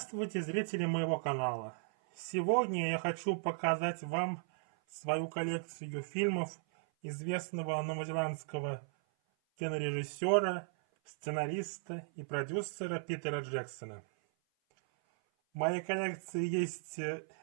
зрители моего канала! Сегодня я хочу показать вам свою коллекцию фильмов известного новозеландского кинорежиссера, сценариста и продюсера Питера Джексона. В моей коллекции есть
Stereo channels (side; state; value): left; silent; 54 dB below the other